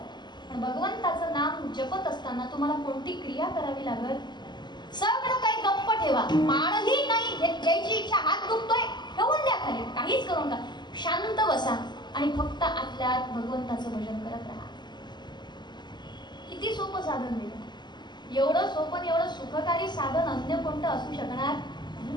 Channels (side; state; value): right; late; 0.21 ms